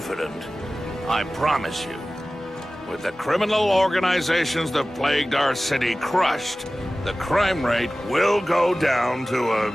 I promise you, with the criminal organizations that plagued our city crushed, the crime rate will go down to a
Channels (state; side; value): normal; both; correlation 0.97